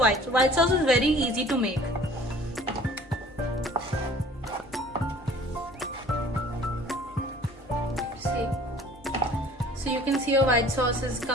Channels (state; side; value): normal; both; correlation 0.50